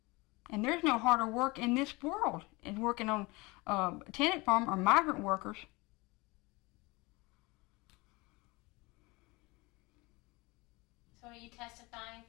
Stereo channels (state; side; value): quieter; right; 24.1 dB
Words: And there's no harder work in this world than working on tenant farm or migrant workers. So are you testifying